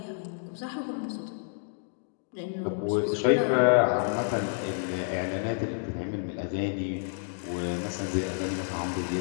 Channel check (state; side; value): silent; right; 58 dB below the other